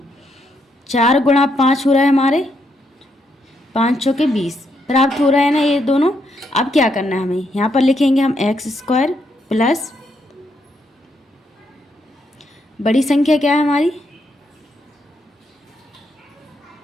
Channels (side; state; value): both; normal; correlation 0.77